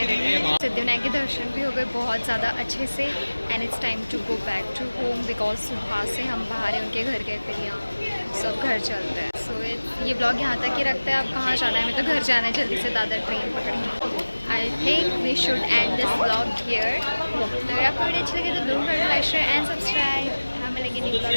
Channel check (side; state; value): both; inverted; correlation -1.00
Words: सिद्धिविनायक के दर्शन भी हो गए बहुत ज़्यादा अच्छे से and it's time to go back to home because सुबह से हम बाहर हैं, उनके घर गए फिर यहाँ। सो अब घर चलते हैं। सो ये ब्लॉग यहाँ तक ही रखते हैं। अब कहाँ जाना है, हमें तो घर जाना है, जल्दी से दादर ट्रेन पकड़ेंगे। I think we should end this blog here. तो अगर आपको वीडियो अच्छी लगी तो don't forget to like, share and subscribe. हमें लगे न्यू ब्लॉग